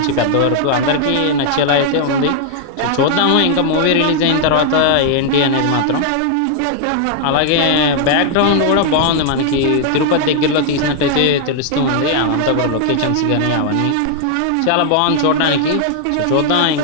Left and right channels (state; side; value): different; both; correlation 0.00